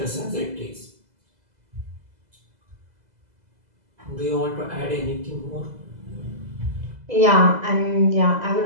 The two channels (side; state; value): left; late; 2.0 ms